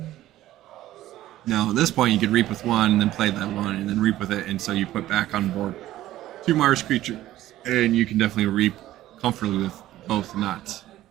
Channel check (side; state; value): left; quieter; 14.5 dB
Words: Now, at this point, you could reap with 1, and then play that 1, and then reap with it, and so you put back on board 2 Mars creatures, and you can definitely reap comfortably with both, and not